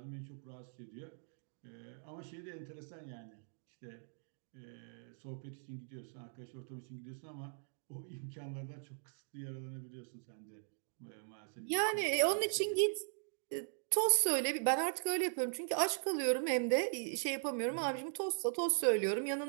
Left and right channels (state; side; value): silent; left; digital silence